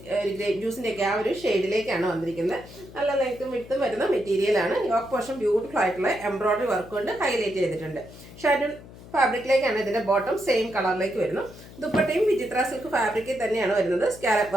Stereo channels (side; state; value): left; noise; hum, 18 dB below the sound